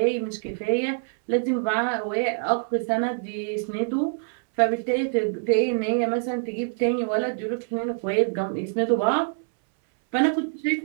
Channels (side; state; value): left; silent; 62 dB below the other